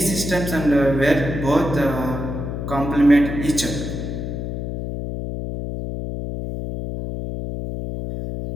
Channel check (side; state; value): left; noise; hum, 5 dB below the sound